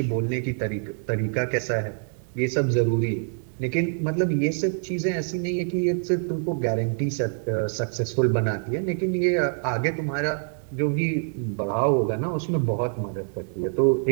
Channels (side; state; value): left; silent; 61 dB below the other